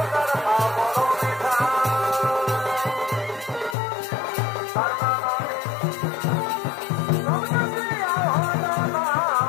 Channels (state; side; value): drops out; right; at 3.8 s